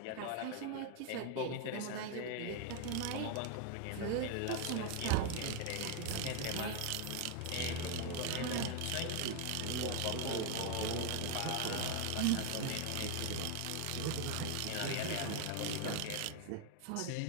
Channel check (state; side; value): different; both; correlation 0.00